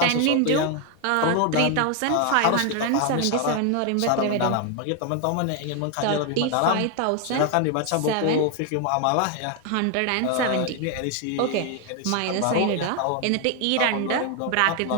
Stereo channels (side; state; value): both; different; correlation 0.01